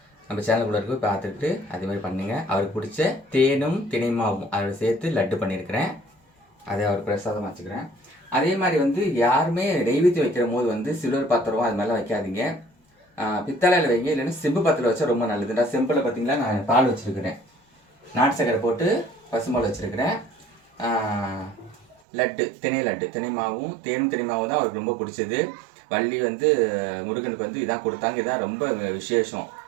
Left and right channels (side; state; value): left; drops out; at 22.0 s